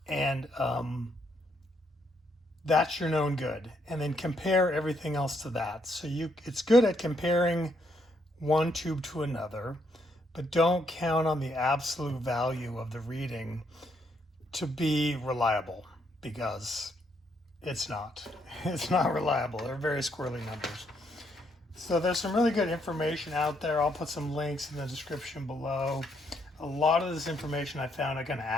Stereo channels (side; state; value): both; normal; correlation 0.74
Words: and that's your known good, and then compare everything else to that. So it's good at comparing one tube to another, but don't count on the absolute value of the reading to be reliable, because it's not. It's not reliable. They're very squirrely numbers. So there's some really good information out there. I'll put some links in the description below. A lot of this information I found kind of